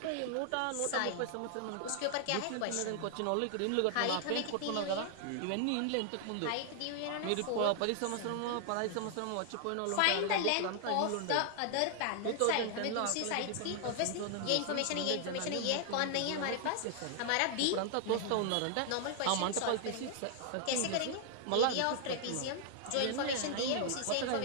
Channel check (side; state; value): both; different; correlation 0.00